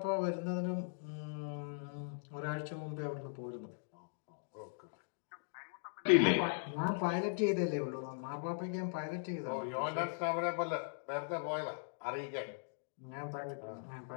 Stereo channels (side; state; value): right; silent; digital silence